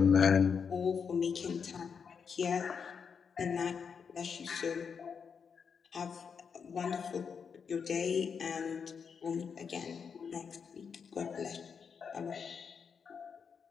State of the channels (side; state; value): right; quieter; 6.3 dB